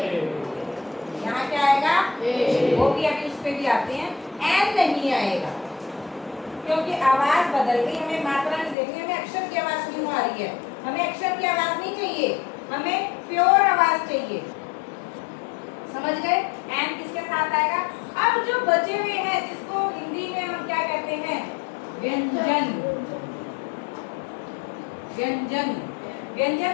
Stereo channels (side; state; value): right; drops out; at 8.8 s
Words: यहाँ क्या आएगा? वो भी अभी उस पे भी आते हैं। एन नहीं आएगा क्योंकि आवाज बदल गई। हमें मात्रा नहीं देखनी, हमें अक्षर की आवाज क्यों आ रही है? हमें अक्षर की आवाज नहीं चाहिए, हमें प्योर आवाज चाहिए। समझ गए? एन किसके साथ आएगा? अब जो बचे हुए हैं, जिसको हिंदी में हम क्या कहते हैं? व्यंजन। व्यंजन। व्यंजन